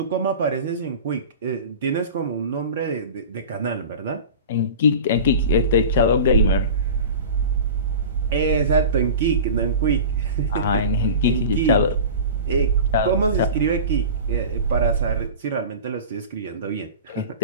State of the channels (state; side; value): inverted; both; correlation -0.34